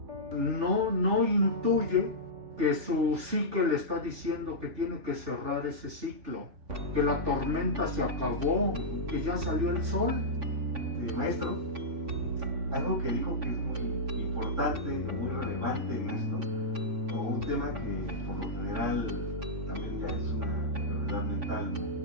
no intuye que su psique le está diciendo que tiene que cerrar ese ciclo, que la tormenta se acabó, que ya salió el sol. Maestro, algo que dijo que es muy importante, muy relevante en esto, o un tema que por lo general también ya es una enfermedad mental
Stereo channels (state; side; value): late; left; 3.5 ms